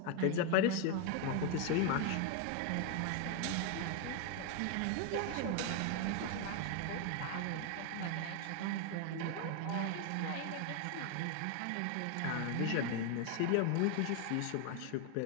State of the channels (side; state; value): both; different; correlation 0.01